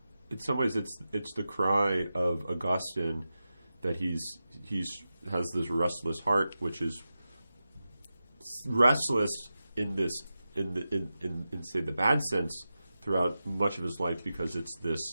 some ways it's the cry of Augustine that he's has this restless heart, which is restless in say the bad sense throughout much of his life, because it's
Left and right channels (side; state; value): both; inverted; correlation -0.92